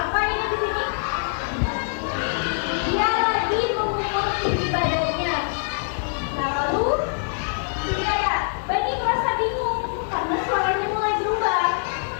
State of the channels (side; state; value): right; silent; digital silence